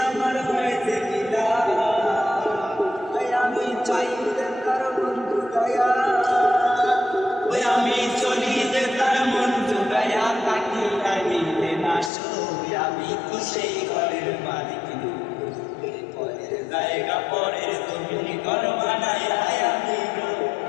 আমার হয়েছে আমি চাই যে তার বন্ধু দয়া ওই আমি চলি যে তার মন জুগায়া তাকে আইলে না সই আমি তো সেই ঘরের মালিক পরের জায়গা পরের জমিন ঘর বানায়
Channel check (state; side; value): drops out; right; at 12.1 s